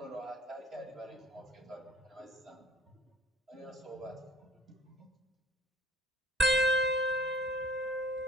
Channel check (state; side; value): normal; both; correlation 0.52